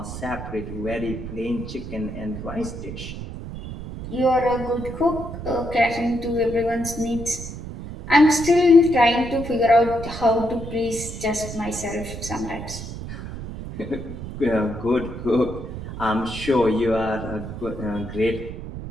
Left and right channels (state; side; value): noise; right; rumble, 9 dB below the sound